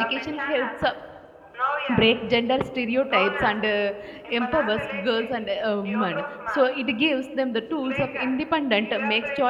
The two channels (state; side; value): identical; both; correlation 1.00